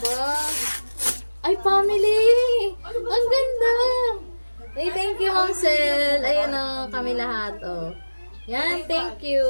Ba. Ay, family! Ang ganda! Hey, thank you, Ma'am Sel. Ayan o, kami lahat. Oh. Yan, thank you.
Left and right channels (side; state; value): both; inverted; correlation -1.00